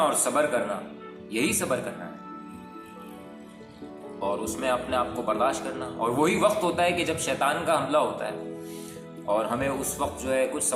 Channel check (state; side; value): identical; both; correlation 1.00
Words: صبر کرنا، یہی صبر کرنا ہے، اور اس میں اپنے آپ کو برداشت کرنا۔ اور وہی وقت ہوتا ہے کہ جب شیطان کا حملہ ہوتا ہے اور ہمیں اس وقت جو ہے کچھ